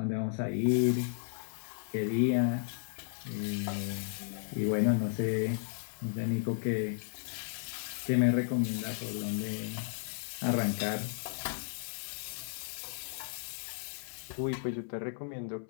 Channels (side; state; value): right; silent; 55 dB below the other